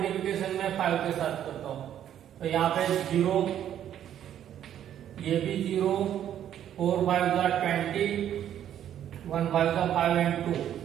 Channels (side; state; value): left; quieter; 10.5 dB